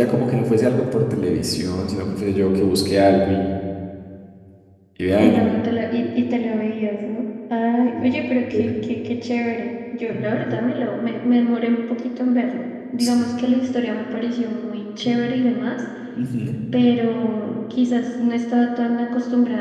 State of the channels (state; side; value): identical; both; correlation 1.00